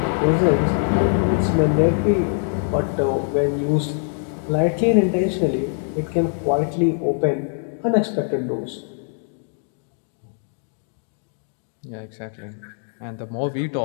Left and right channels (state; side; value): silent; right; 64 dB below the other